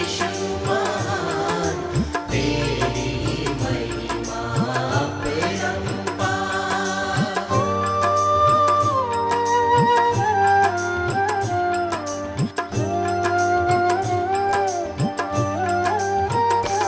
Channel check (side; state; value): both; identical; correlation 1.00